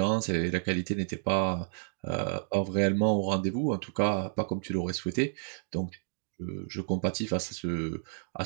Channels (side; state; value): left; silent; digital silence